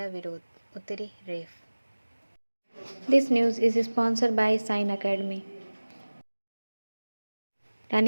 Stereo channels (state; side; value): inverted; both; correlation -1.00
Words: विरोध, उतरी रेफ। This news is sponsored by Sign Academy.